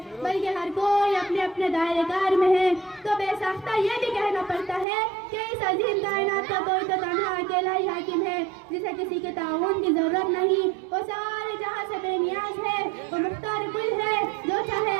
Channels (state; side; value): drops out; left; at 4.9 s